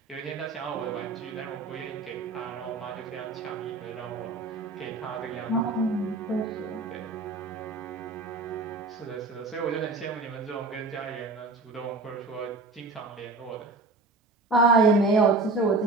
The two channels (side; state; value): left; quieter; 3.6 dB